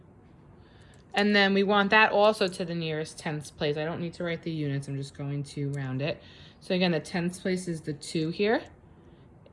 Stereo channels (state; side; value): identical; both; correlation 1.00